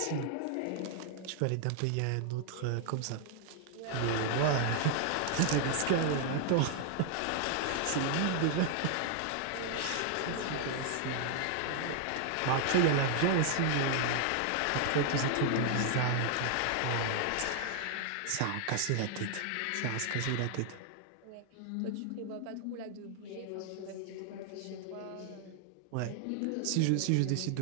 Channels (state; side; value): different; both; correlation 0.00